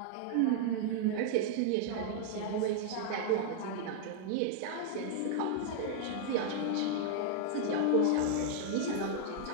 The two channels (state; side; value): different; both; correlation -0.01